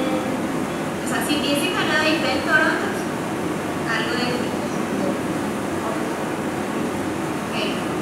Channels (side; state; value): both; identical; correlation 1.00